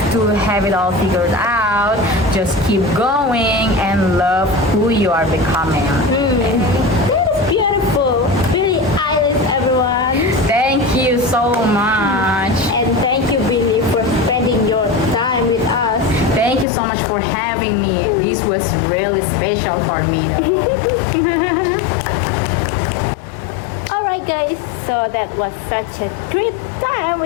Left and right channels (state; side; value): drops out; right; at 16.7 s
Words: to have it all figured out. Just keep going and love who you are becoming. That is beautiful. Billie Eilish, everyone. Thank you so much. And thank you, Billy, for spending your time with us. Thank you so much for having me. This was really special for me though. Alright, guys, so that was such a great time